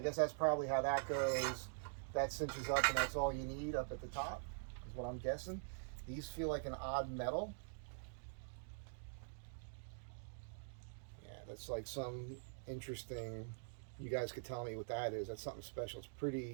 guess that's probably how that goes. That cinches up, and that's all you need up at the top, is what I'm guessing. These feel like an odd metal. Yeah, that's like some interesting, you guys could tell me what that is. That's something special. It's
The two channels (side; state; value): left; silent; digital silence